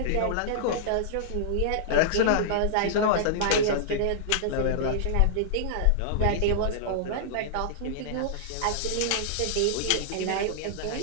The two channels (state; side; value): different; both; correlation -0.02